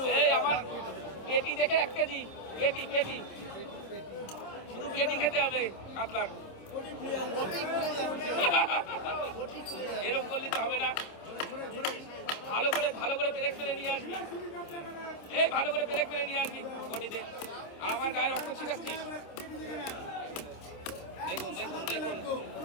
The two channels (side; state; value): right; late; 26 ms